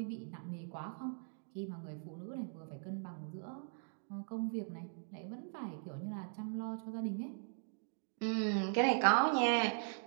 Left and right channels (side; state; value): left; silent; digital silence